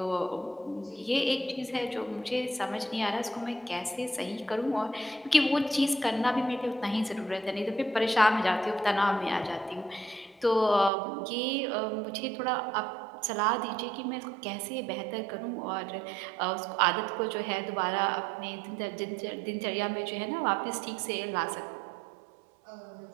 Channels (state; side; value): drops out; left; at 10.9 s